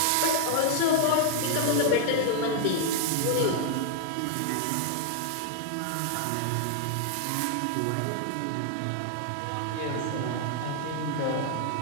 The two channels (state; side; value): different; both; correlation 0.00